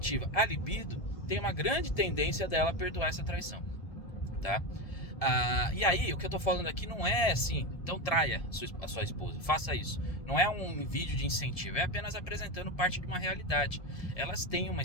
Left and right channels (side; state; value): right; late; 1.7 ms